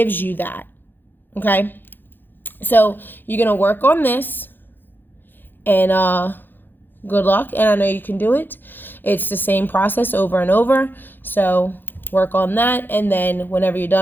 you that? Okay? So you're going to work on this, and good luck, and I know you can do it. It's the same process over and over. So work on that, and then whenever you're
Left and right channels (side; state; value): right; late; 0.094 ms